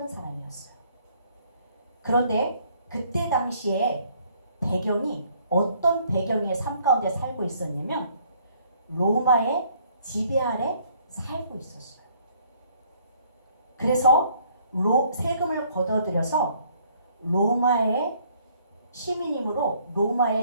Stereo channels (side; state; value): both; inverted; correlation -0.63